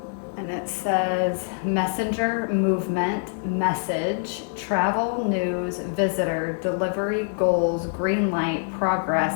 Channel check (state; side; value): silent; right; 62 dB below the other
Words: And it says messenger, movement, message, travel, news, visitor, delivery, goals, green light, progress,